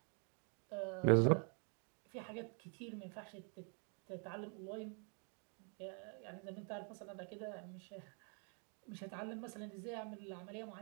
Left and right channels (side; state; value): left; quieter; 39.4 dB